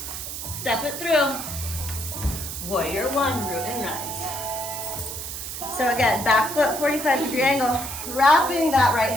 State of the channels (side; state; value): right; noise; hiss, 7 dB below the sound